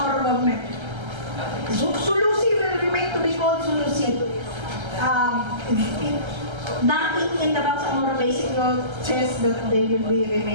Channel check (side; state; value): left; late; 1.3 ms